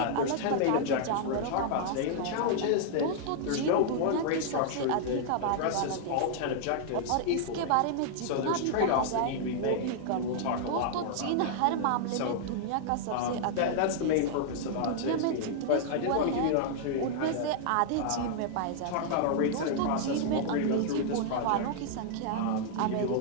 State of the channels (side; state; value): both; different; correlation -0.01